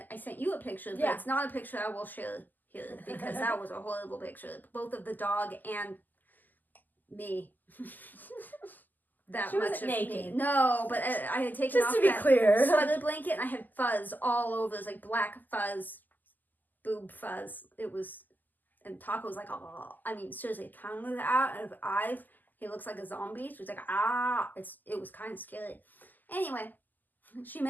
I sent you a picture, but it's not a picture I will share here because that was a horrible picture. Both of the dog and me. She wasn't naked. No, but I had taken off that sweater blanket and I had fuzz all over. It was like black fuzz, boob fuzz. It was, and Taco was like, oh, I mean, seriously, tongue was out of his eyes. He looks like a zombie. She was like, it was kind of scary. Anyway, she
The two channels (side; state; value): right; late; 0.085 ms